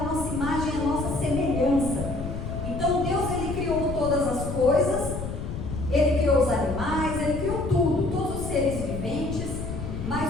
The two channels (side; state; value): left; noise; rumble, 6 dB below the sound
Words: nossa imagem e à nossa semelhança. Então Deus ele criou todas as coisas, Ele criou os animais, Ele criou tudo, todos os seres viventes,